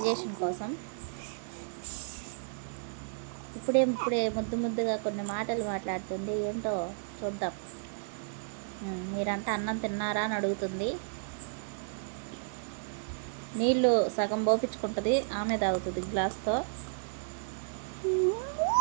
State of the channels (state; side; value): silent; left; digital silence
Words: కోసం. ఇప్పుడే ముద్దు ముద్దుగా కొన్ని మాటలు మాట్లాడుతుంది. ఏంటో చూద్దాం. మీరంతా అన్నం తిన్నారా అని అడుగుతుంది. నీళ్ళు సగం పోపించుకుంటుంది, ఆమె తాగుతుంది గ్లాస్తో.